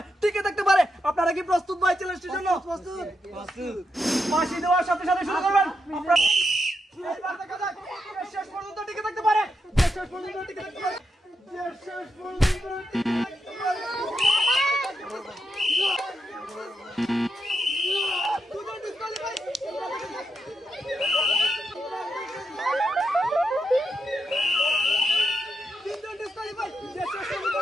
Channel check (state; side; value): normal; both; correlation 0.84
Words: টিকে থাকতে পারে। আপনারা কি প্রস্তুত ভাই চ্যালেঞ্জটির জন্য? প্রস্তুত। ফাঁসি দেওয়ার সাথে সাথে শুরু করবেন। এইবার দেখা যাক কে শেষ পর্যন্ত টিকে থাকতে পারে। শেষ পর্যন্ত টিকে থাকতে পারে। শেষ পর্যন্ত টিকে থাকতে পারে।